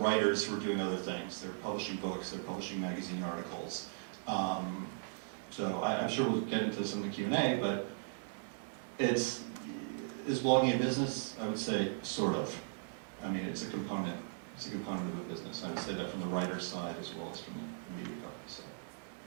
who are doing other things. They're publishing books, they're publishing magazine articles. So I'm sure we'll get into this in the Q&A, but is blogging a business? I would say sort of. I mean, it's a component. It's a component of a business. I would say that from the writer's side as well as from the media company. So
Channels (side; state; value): left; silent; digital silence